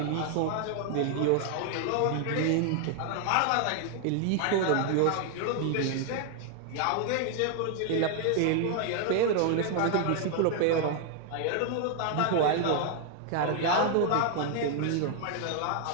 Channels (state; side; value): different; both; correlation 0.00